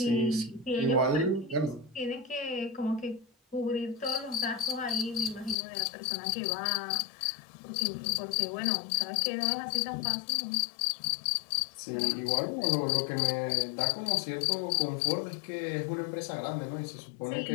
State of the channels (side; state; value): right; drops out; at 5.6 s